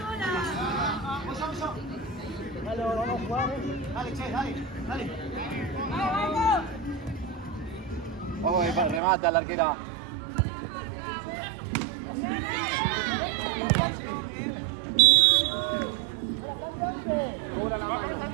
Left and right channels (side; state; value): left; drops out; at 9.0 s